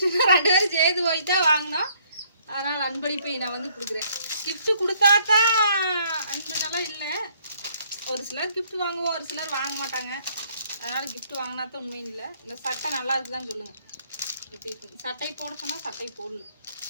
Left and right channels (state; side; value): inverted; both; correlation -0.64